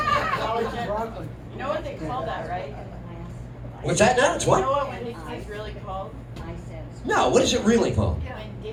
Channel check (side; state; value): both; identical; correlation 1.00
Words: know what they call that, right? What's that now? It's what? You know what Winn-Dixie's really called? No, what is it really called?